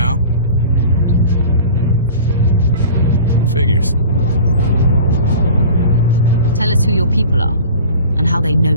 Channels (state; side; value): inverted; both; correlation -0.40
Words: Figures. Tell us who your people are, and how they